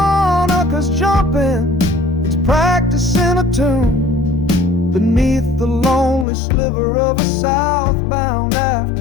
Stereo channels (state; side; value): drops out; right; at 6.2 s